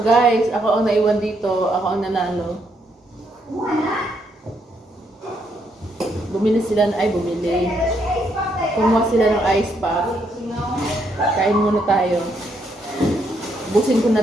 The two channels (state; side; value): normal; both; correlation 0.75